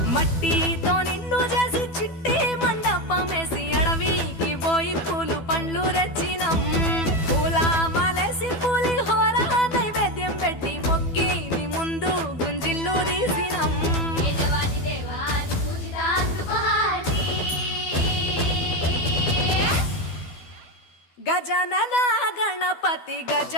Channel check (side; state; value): right; late; 12 ms